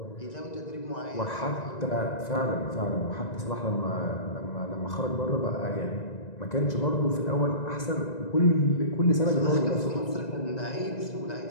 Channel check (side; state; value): right; late; 1.9 ms